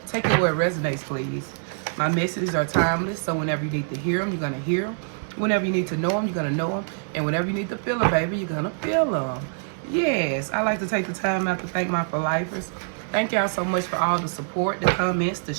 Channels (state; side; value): silent; left; 62 dB below the other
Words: Take it where it resonates, please. My messages are timeless, so whenever you need to hear them, you're going to hear them. Whenever you need to know them, you're going to know them. And whenever you need to feel them, baby, you're going to feel them. Yes, I like to take the time out to thank my for-lifers. Thank y'all so much for all the support, the comments, the